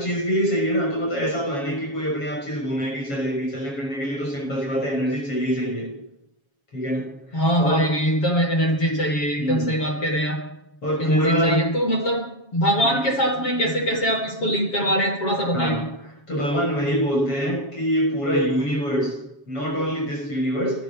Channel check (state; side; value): late; right; 7.2 ms